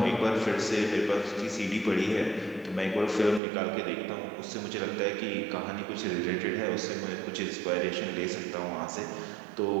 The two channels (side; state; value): left; drops out; at 3.4 s